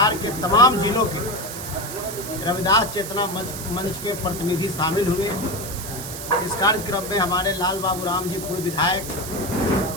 के तमाम जिलों के रविदास चेतना मंच के प्रतिनिधि शामिल हुए। इस कार्यक्रम में हमारे लाल बाबू राम जी पूर्व विधायक,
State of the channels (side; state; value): right; noise; hiss, 9 dB below the sound